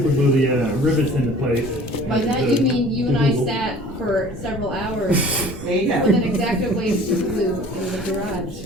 glue the rivets into place. By that you mean you and I sat for several hours with an X-Acto blade super glue in the garage.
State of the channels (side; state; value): both; normal; correlation 0.47